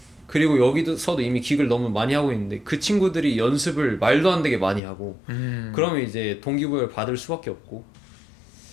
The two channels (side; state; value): right; drops out; at 4.8 s